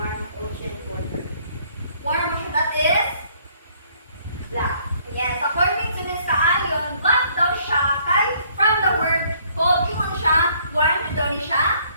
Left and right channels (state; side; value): inverted; both; correlation -0.63